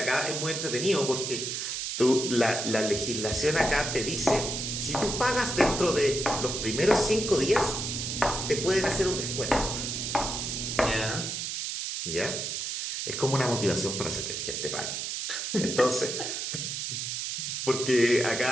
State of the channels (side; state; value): right; noise; hiss, 3 dB below the sound